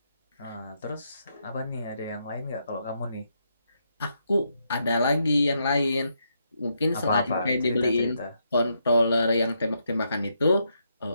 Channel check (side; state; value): both; inverted; correlation -0.79